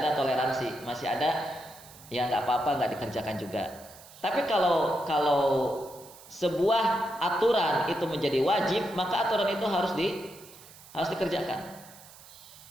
toleransi, masih ada ya nggak apa-apa nggak dikerjakan juga. Tapi kalau sebuah aturan itu menjadi wajib, maka aturan itu harus dikerjakan.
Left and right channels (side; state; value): right; noise; hiss, 20 dB below the sound